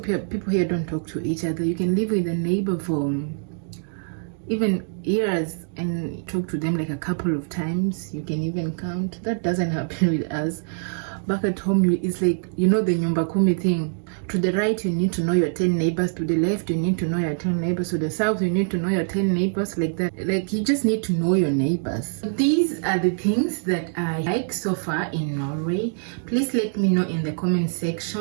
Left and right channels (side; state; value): left; silent; digital silence